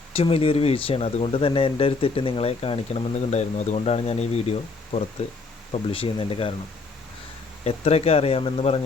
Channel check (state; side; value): quieter; right; 4.0 dB